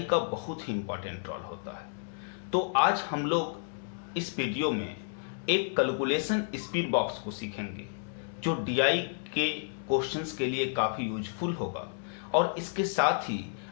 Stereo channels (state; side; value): silent; right; digital silence